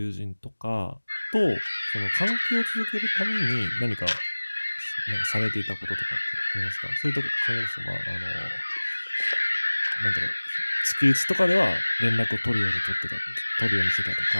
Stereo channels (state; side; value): inverted; both; correlation -1.00